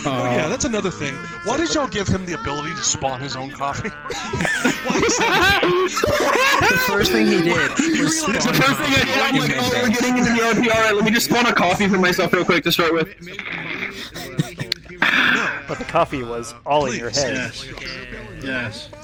Yeah, that's another thing. Why did y'all give him the ability to spawn his own coffee? The first thing he did was spawn. The first thing I did, I'm like, oh, we're getting into the RP. Alright, let me just spawn a coffee for myself real quick to start with. But the coffee was all in your head. Yes.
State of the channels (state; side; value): identical; both; correlation 1.00